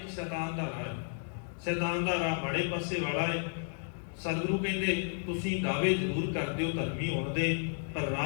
ਸ਼ੈਤਾਨ ਦਾ ਰਾਹ ਹੈ। ਸ਼ੈਤਾਨ ਦਾ ਰਾਹ ਮਾੜੇ ਪਾਸੇ ਵਾਲਾ ਹੈ। ਸਤਿਗੁਰੂ ਕਹਿੰਦੇ ਤੁਸੀਂ ਦਾਅਵੇ ਜ਼ਰੂਰ ਕਰਦੇ ਹੋ ਧਰਮੀ ਹੋਣ ਦੇ, ਪਰ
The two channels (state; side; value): silent; right; 56 dB below the other